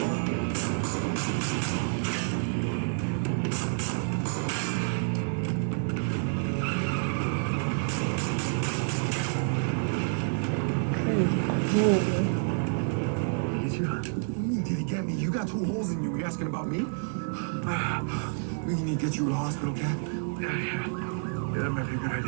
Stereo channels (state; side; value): silent; left; 59 dB below the other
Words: Get you? What do you mean, did he get me? You got 2 holes in you. You asking about me? We need to get you to the hospital, Cap. Yeah, that might be a good